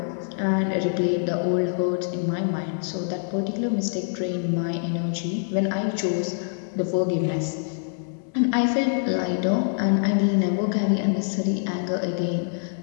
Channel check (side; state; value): right; silent; 62 dB below the other